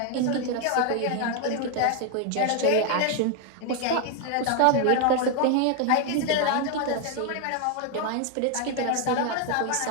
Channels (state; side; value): different; both; correlation 0.01